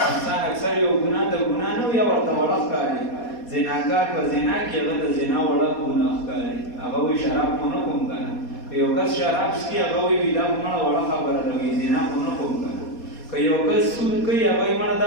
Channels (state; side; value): late; right; 4.2 ms